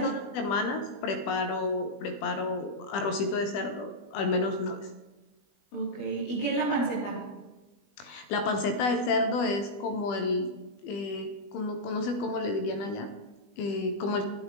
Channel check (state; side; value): late; right; 20 ms